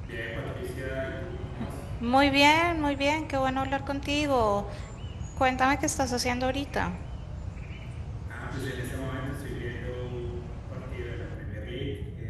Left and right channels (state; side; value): identical; both; correlation 1.00